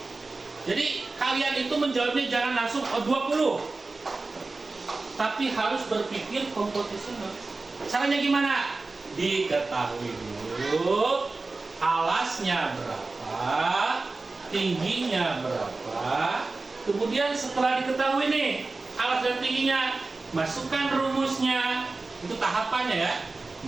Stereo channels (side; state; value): left; quieter; 3.6 dB